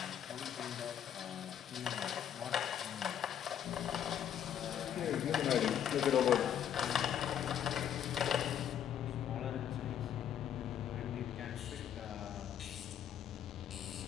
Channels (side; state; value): right; quieter; 9.7 dB